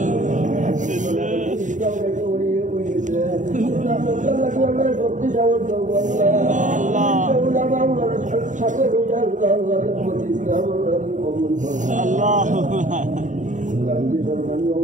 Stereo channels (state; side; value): late; left; 0.36 ms